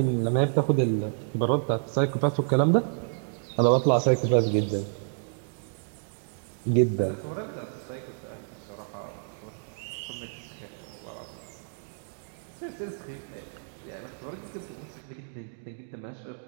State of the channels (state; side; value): silent; left; digital silence